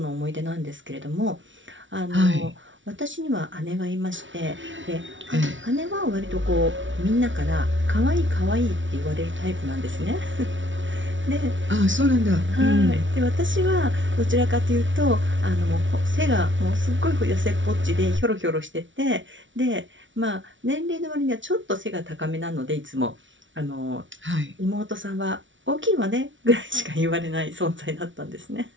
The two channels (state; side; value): late; left; 0.56 ms